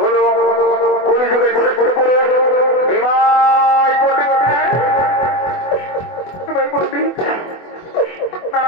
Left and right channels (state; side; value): late; right; 24 ms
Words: হলো কলিযুগের শ্রেষ্ঠ পুরুষ নিমাই পণ্ডিত। নিমাই পণ্ডিত